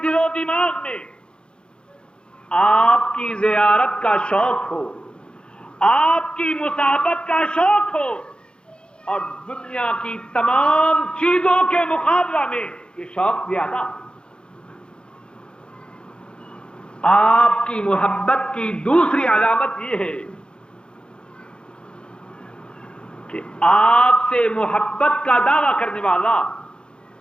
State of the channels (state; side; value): late; right; 0.052 ms